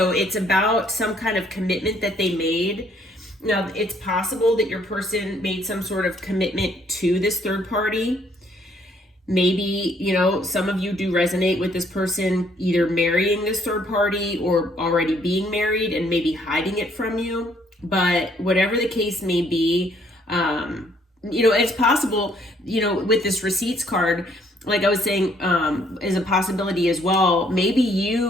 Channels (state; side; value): normal; both; correlation 0.66